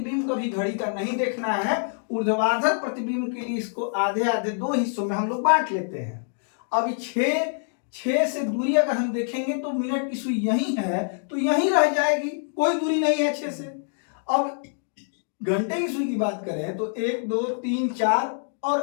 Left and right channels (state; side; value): silent; right; digital silence